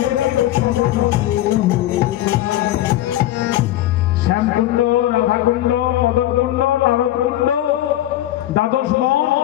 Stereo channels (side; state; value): right; quieter; 14.1 dB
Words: শ্যামকুণ্ড, রাধাকুণ্ড, মদনকুণ্ড, নারদকুণ্ড, দ্বাদশ বন,